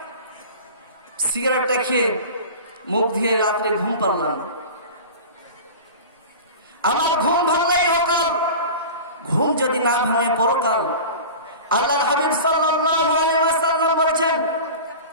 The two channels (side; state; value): both; inverted; correlation -0.34